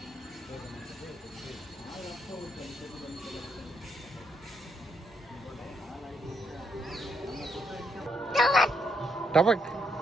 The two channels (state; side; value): normal; both; correlation 0.76